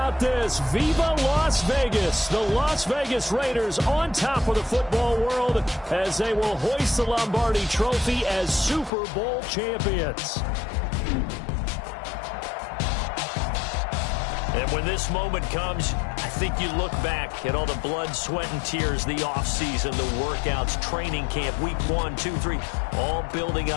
this? Viva Las Vegas! The Las Vegas Raiders on top of the football world as they will hoist the Lombardi Trophy as Super Bowl champions. And when this moment comes, I think you look back at all the blood, sweat, and tears, the offseason, the workouts, training camp, week 1, 2, 3, all building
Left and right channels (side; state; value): right; drops out; at 8.9 s